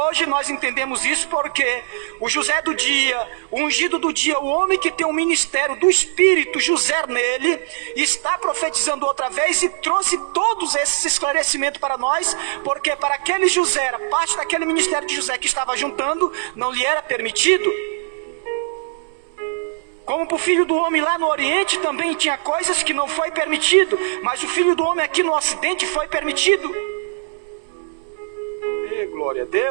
nós entendemos isso porque o José do dia, o ungido do dia, o homem que tem o ministério do Espírito, José nele, está profetizando outra vez e trouxe todos esses esclarecimentos para nós, porque para aquele José, a parte daquele ministério de José que estava juntando, não lhe era permitido. Como para o filho do homem lá no Oriente também tinha coisas que não foi permitido, mas o filho do homem aqui no Ocidente foi permitido. Glória a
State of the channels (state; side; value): silent; left; digital silence